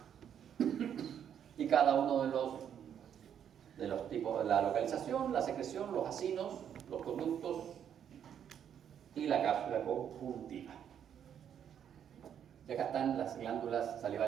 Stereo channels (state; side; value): quieter; left; 8.9 dB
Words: y cada uno de los tipos, la localización, la secreción, los acinos, los conductos y la cápsula conjuntiva. Y acá están las glándulas